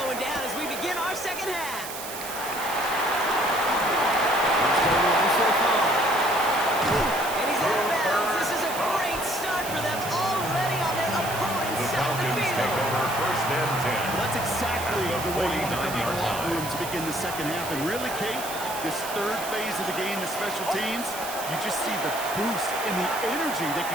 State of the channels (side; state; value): right; noise; hiss, 9 dB below the sound